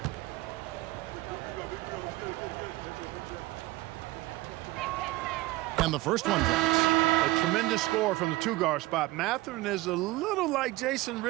And the first one drops. A tremendous score from the 2-guard spot. Mathurin is a little like Jason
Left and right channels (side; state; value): left; quieter; 19.0 dB